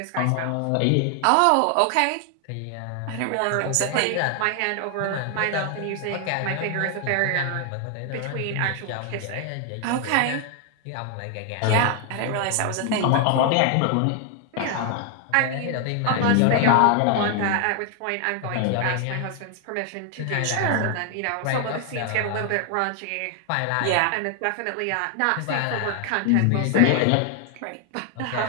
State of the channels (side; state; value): both; different; correlation 0.00